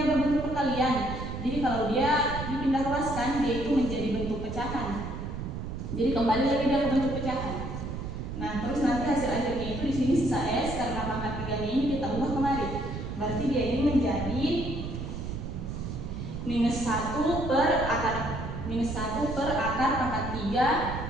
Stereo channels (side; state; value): right; noise; rumble, 6 dB below the sound